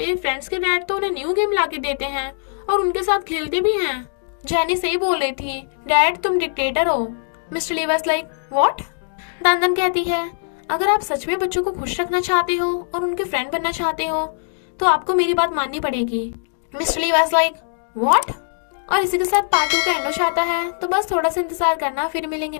फ्रेंड्स के डैड तो उन्हें न्यू गेम लाके देते हैं और उनके साथ खेलते भी हैं। जेनी सही बोल रही थी, डैड तुम डिक्टेटर हो। Mister Lee was like what. दानदन कहती है अगर आप सच में बच्चों को खुश रखना चाहते हो और उनके फ्रेंड बनना चाहते हो तो आपको मेरी बात माननी पड़ेगी। Mister Lee was like what. और इसी के साथ पार्ट 2 का एंड हो जाता है। तो बस थोड़ा सा इंतजार करना, फिर मिलेंगे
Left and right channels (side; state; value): right; silent; digital silence